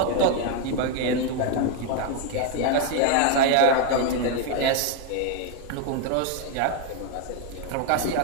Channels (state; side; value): different; both; correlation 0.01